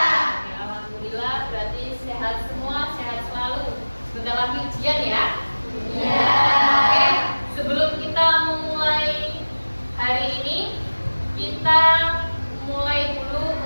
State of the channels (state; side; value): inverted; both; correlation -1.00